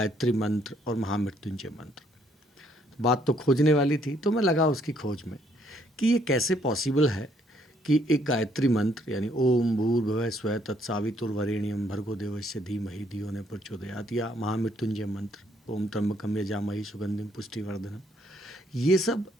मंत्र और महामृत्युंजय मंत्र। बात तो खोजने वाली थी, तो मैं लगा उसकी खोज में कि ये कैसे पॉसिबल है कि एक गायत्री मंत्र यानी ओम भूर्भुवः स्वः तत्सवितुर्वरेण्यं भर्गो देवस्य धीमहि धियो न प्रचोदयात् या महामृत्युंजय मंत्र ओम त्र्यंबकम यजामहे सुगंधिम पुष्टिवर्धनम, ये सब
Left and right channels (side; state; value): both; normal; correlation 0.68